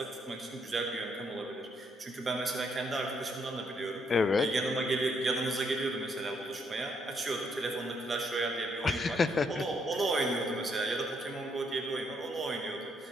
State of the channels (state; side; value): normal; both; correlation 0.73